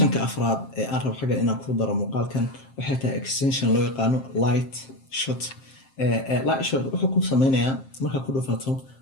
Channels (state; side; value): late; right; 7.5 ms